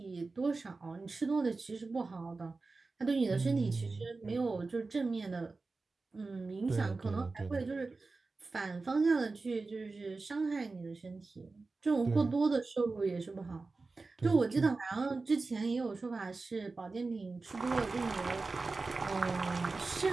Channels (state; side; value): quieter; left; 3.8 dB